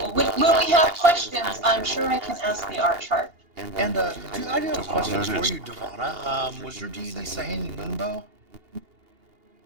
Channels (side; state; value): left; late; 2.8 ms